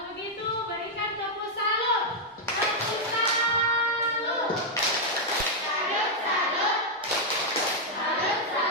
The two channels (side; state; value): both; normal; correlation -0.03